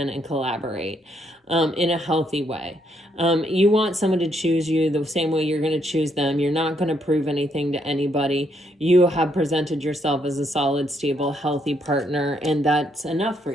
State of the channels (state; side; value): normal; both; correlation 0.74